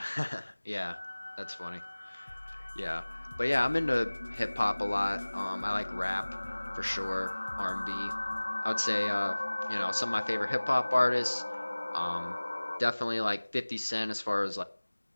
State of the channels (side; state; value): both; inverted; correlation -1.00